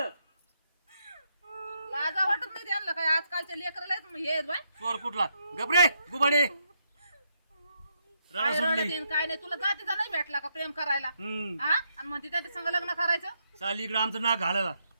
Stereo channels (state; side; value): inverted; both; correlation -0.78